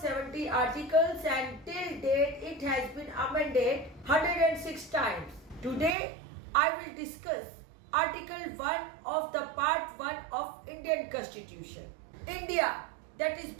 articles and till date it has been amended 106 times. Today I will discuss Article 1 of the Part 1 of Indian Constitution. India, that is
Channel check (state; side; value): drops out; left; at 6.0 s